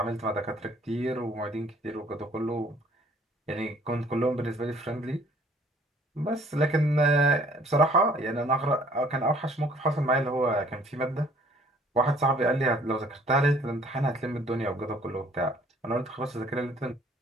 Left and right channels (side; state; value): both; normal; correlation 0.58